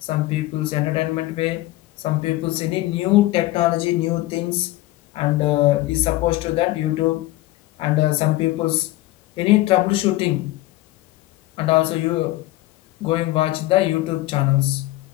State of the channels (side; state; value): right; quieter; 17.5 dB